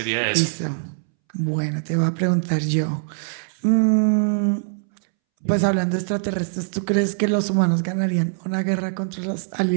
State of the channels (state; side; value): silent; left; 64 dB below the other